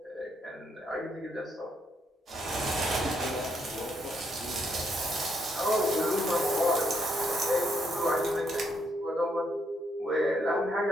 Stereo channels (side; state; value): both; normal; correlation 0.75